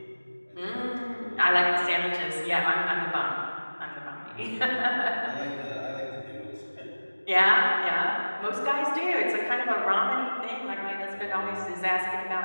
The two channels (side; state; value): both; inverted; correlation -1.00